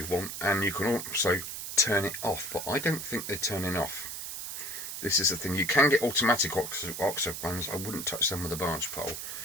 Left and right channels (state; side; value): noise; right; hiss, 6 dB below the sound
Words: want, and you can also turn it off, but I don't think they're turning off. This is the thing, you can get automatic Oxford ones. I wouldn't touch them with a barge pole.